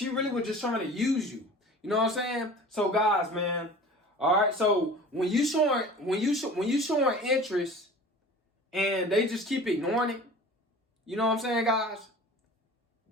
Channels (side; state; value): both; normal; correlation 0.41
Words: really was just trying to use you. You know what I'm saying? So guys, man, all right. So when you showing interest and they just keep ignoring it, you know what I'm saying, guys?